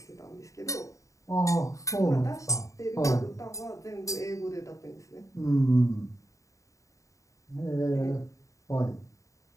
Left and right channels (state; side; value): late; right; 0.16 ms